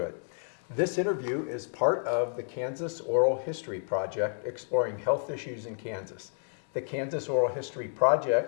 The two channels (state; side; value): silent; right; digital silence